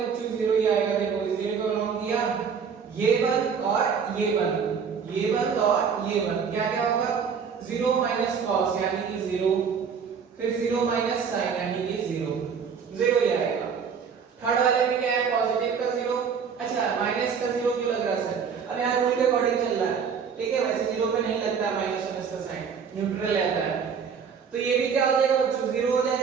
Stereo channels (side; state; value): left; quieter; 6.5 dB